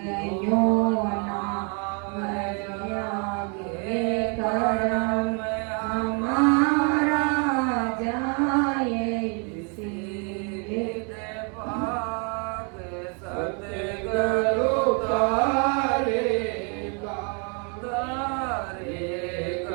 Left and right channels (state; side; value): quieter; left; 37.2 dB